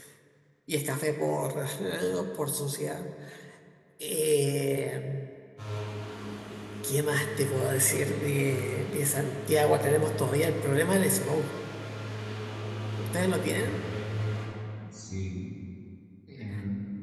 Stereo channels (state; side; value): identical; both; correlation 1.00